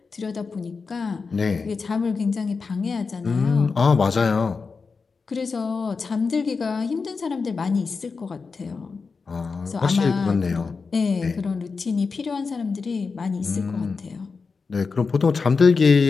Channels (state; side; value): quieter; right; 4.8 dB